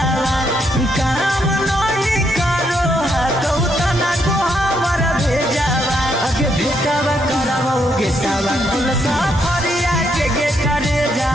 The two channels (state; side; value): normal; both; correlation 0.75